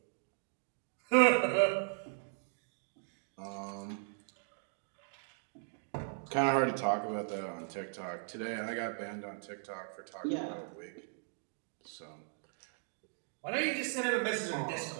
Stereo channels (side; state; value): left; silent; 53 dB below the other